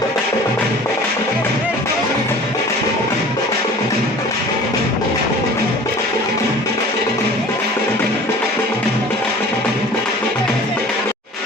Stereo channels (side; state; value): both; normal; correlation 0.44